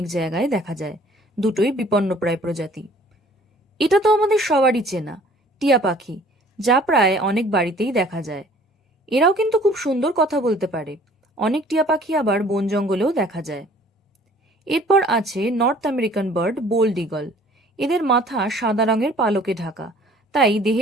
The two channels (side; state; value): both; normal; correlation 0.53